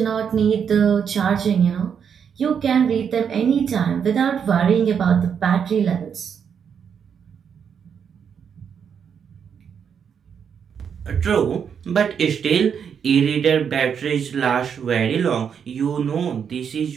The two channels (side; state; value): left; quieter; 7.4 dB